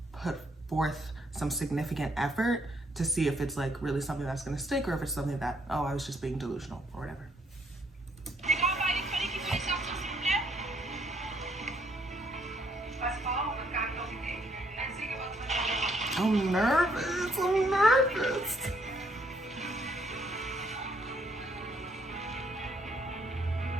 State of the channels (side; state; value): both; normal; correlation 0.69